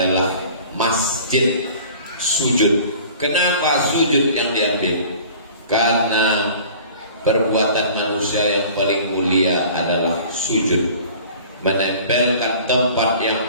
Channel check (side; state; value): both; inverted; correlation -0.46